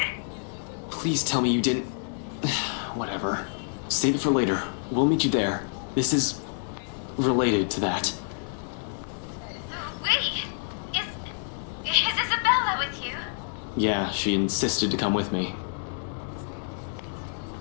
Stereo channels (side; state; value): right; silent; digital silence